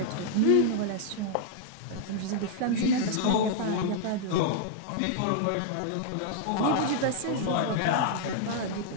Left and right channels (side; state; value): both; different; correlation -0.01